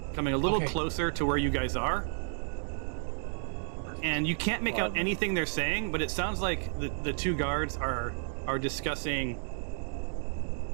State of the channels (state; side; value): silent; left; digital silence